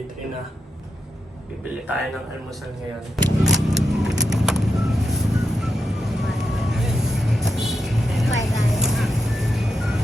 3 na. Bibili tayo ng almusal ngayon.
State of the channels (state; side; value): normal; both; correlation 0.86